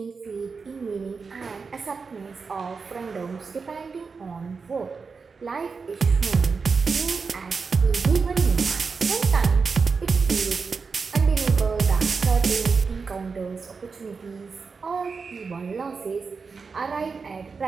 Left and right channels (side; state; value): left; quieter; 4.9 dB